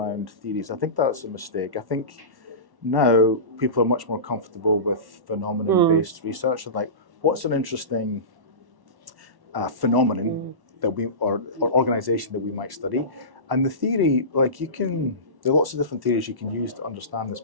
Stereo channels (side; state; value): left; late; 1.1 ms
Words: theories. I think that's a mistake. I think now people are much more comfortable with phenomenon-based research, and like what's an interesting phenomenon that or organization that we might study, and the theory, like there are lots of different theories you can use to understand this